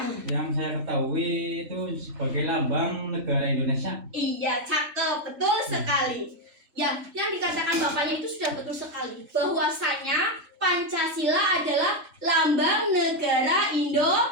Yang saya ketahui itu sebagai lambang negara Indonesia. Iya, cakep, betul sekali. Ya, yang dikatakan Bapaknya itu sudah betul sekali. Bahwasanya Pancasila adalah lambang negara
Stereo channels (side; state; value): left; late; 3.5 ms